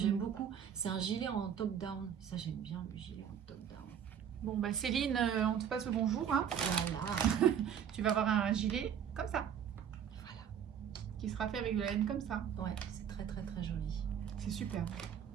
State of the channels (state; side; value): quieter; left; 8.6 dB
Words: beaucoup. C'est un gilet en top-down. Ça, j'aime bien le gilet en top-down. Bon bah Céline, on te passe le bonjour. Hein. Voilà. Tu vas avoir un gilet comme ça. Voilà. Qui sera fait avec de la laine comme ça. Ouais, c'est très très très joli. C'est super.